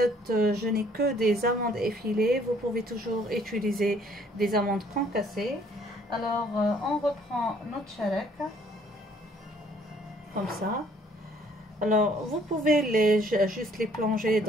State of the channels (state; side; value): normal; both; correlation 0.61